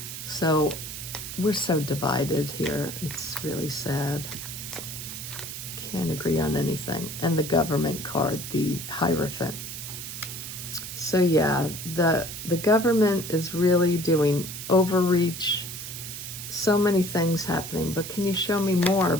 So we're so divided here. It's really sad. Can't agree on anything. And the government card, the Hierophant. So yeah, the government is really doing overreach. So many things happening. But can you show me more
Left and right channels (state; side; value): noise; right; hiss, 8 dB below the sound